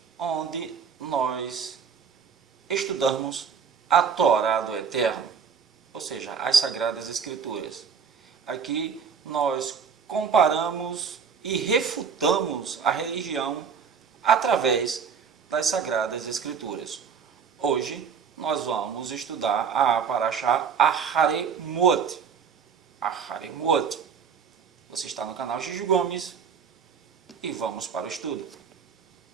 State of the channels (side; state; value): left; quieter; 6.5 dB